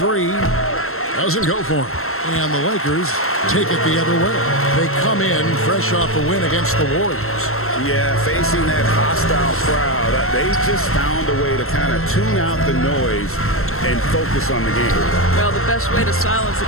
Doesn't go for him. And the Lakers take it the other way. They come in fresh off a win against the Warriors. Yeah, facing that hostile crowd, they just found a way to kind of tune out the noise and focus on the game. Well, the best way to silence the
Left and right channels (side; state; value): right; late; 0.62 ms